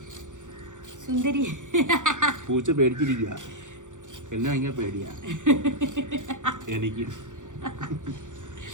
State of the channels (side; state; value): left; late; 0.86 ms